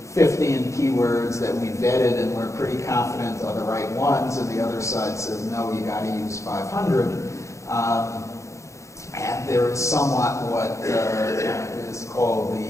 15 keywords that we vetted and we're pretty confident are the right ones, and the other side says, no, you got to use 500. And there is somewhat what is called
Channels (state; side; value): late; right; 0.15 ms